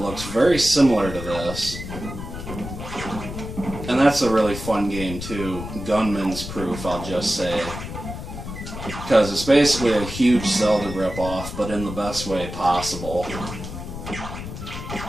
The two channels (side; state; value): left; noise; rumble, 9 dB below the sound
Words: very similar to this. And that's a really fun game too. Gunman's Proof, I'll just say. Because it's basically a huge Zelda ripoff, but in the best way possible.